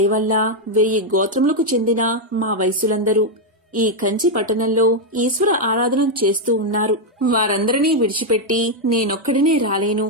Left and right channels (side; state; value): both; normal; correlation 0.01